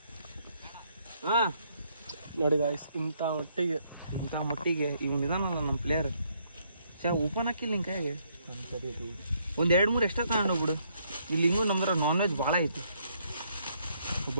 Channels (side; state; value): both; inverted; correlation -0.71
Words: ಹಾ ನೋಡಿ ಗಾಯ್ಸ್, ಇಂಥ ಮೊಟ್ಟಿಗೆ ಇವನ್ ಇದಾನಲ್ಲ ನಮ್ಮ ಪ್ಲೇಯರ್, ಓಪನ್ ಹಾಕಿಲ್ಲ ನಿನ್ ಕೈಗೆ. ಒಂದ್ 2-3 ಎಕ್ಸ್ಟ್ರಾ ತಗೊಂಡೋಗ್ಬಿಡು. ಇಲ್ಲಿ ಹಿಂಗೂ ನಮ್ದ್ರ ನಾನ್ ವೆಜ್ ಭಾಳ ಐತಿ.